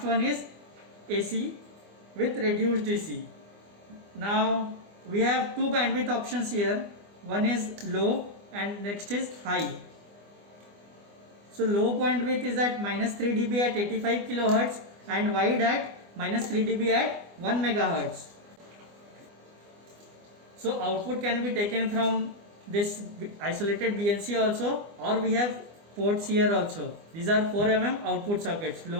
one is AC with reduced DC. Now we have two bandwidth options here. One is low and next is high. So low bandwidth is at minus 3 dB at 85 kilohertz and wide at minus 3 dB at 1 megahertz. So output can be taken from this isolated BNC also, or we have ports here also. These are 4 mm output circuits,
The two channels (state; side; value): late; left; 24 ms